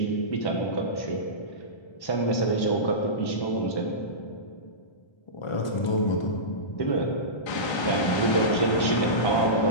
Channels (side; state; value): right; late; 1.3 ms